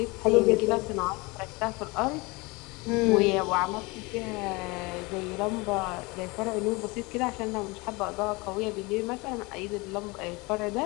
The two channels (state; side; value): quieter; right; 25.4 dB